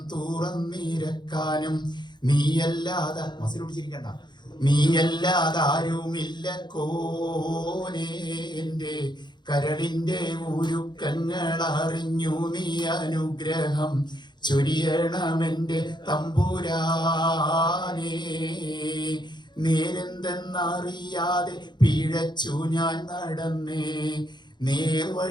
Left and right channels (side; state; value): right; late; 0.21 ms